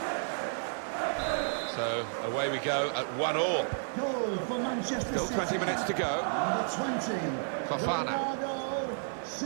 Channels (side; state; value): left; silent; 56 dB below the other